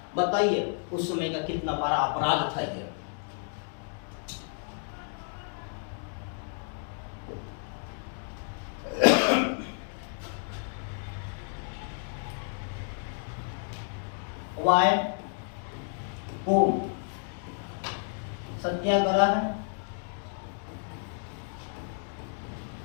बताइए उस समय का कितना बड़ा अपराध था ये। वाय कोम सत्याग्रह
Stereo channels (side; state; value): right; silent; 57 dB below the other